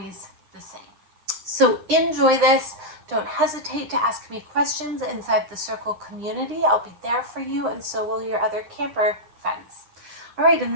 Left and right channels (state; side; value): late; left; 9.8 ms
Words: the same. So enjoy this. Don't hesitate to ask me questions inside the Circle community. I'll be there for you, and so will your other camper friends. All right, in